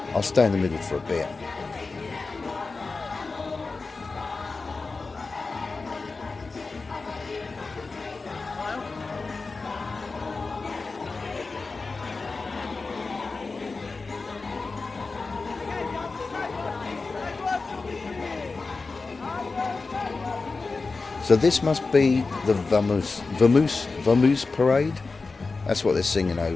I'll stay in the middle for a bit. So this must be the Vamoose parade. That's what they're singing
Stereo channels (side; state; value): right; quieter; 4.0 dB